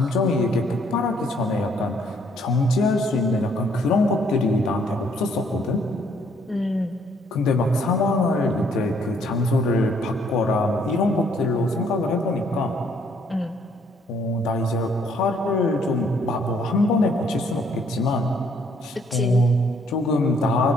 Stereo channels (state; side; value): normal; both; correlation 0.66